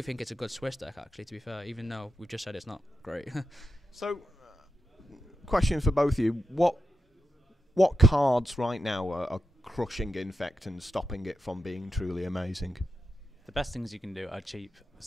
think it's a good Swiss deck, actually, to be fair, even though we've just said it's not great. So, question for both of you. What cards right now are crushing Infect and stopping it from being truly amazing? The best things you can do are cheap,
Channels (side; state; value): both; normal; correlation 0.90